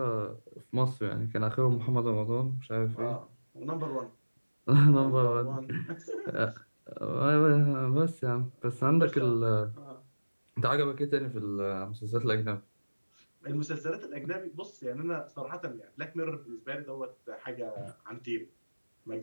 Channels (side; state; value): both; inverted; correlation -1.00